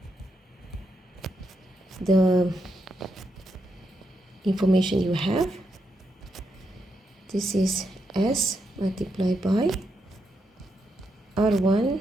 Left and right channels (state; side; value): normal; both; correlation 0.82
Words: the information you have. This is s multiplied by R1